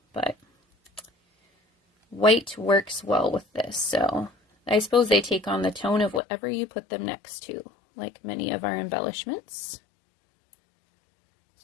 but white works well with this. So I suppose they take on the tone of whatever you put them next to, like many of our embellishments.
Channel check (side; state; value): right; drops out; at 6.2 s